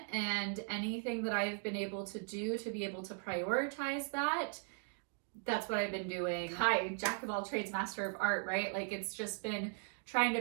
And anything that I've been able to do to be able to prioritize that, that's what I've been doing. Hi, jack of all trades, master of art, right? Like, it's just been trying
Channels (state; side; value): silent; left; 52 dB below the other